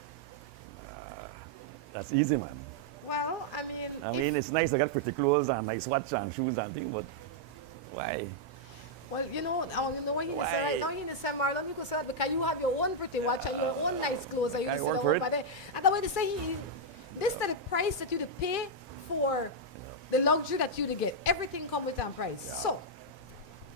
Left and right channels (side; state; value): both; normal; correlation -0.04